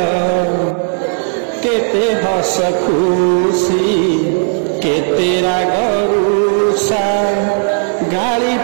କେତେ ହସ ଖୁସି କେତେ ରାଗ ରୁଷା, ଗାଳି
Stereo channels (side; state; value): left; silent; digital silence